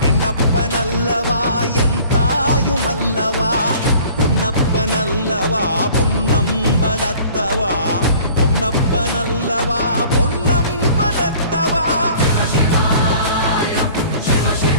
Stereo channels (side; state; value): both; inverted; correlation -0.49